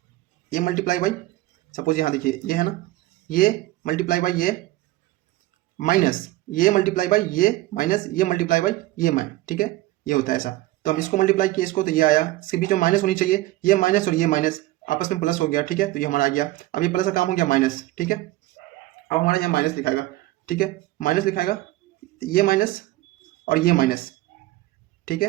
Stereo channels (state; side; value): quieter; left; 17.3 dB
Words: ये मल्टीप्लाई बाई, सपोज यहाँ देखिए ये है ना, ये मल्टीप्लाई बाई ये माइनस, ये मल्टीप्लाई बाई ये माइनस, ये मल्टीप्लाई बाई ये ठीक है, ये होता है ऐसा। तो हम इसको मल्टीप्लाई किए इसको, तो ये आया, इसके बीच में माइनस होनी चाहिए, ये माइनस और ये माइनस आपस में प्लस हो गया, ठीक है। तो ये हमारा आ गया, अब ये प्लस का काम हो गया माइनस, ठीक है। अब हमारा यहाँ माइनस लिखाएगा, ठीक है, माइनस लिखाएगा, ये माइनस और ये माइनस, ठीक